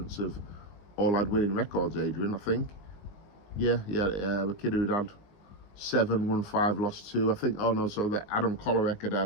have all had winning records, Adrian, I think. Yeah, the kid who'd had 7, won 5, lost 2. I think, so that Adam Kolarek had, I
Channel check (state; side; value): late; right; 19 ms